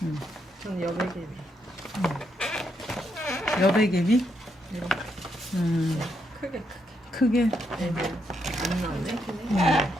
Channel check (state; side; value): normal; both; correlation 0.79